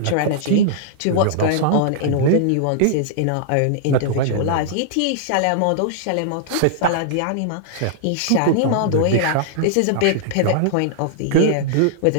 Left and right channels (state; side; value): different; both; correlation -0.01